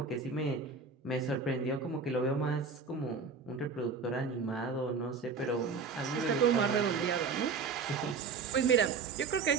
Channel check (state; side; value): quieter; left; 4.9 dB